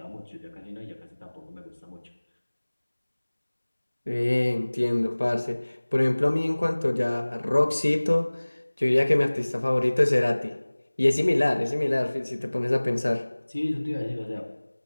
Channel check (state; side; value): inverted; both; correlation -1.00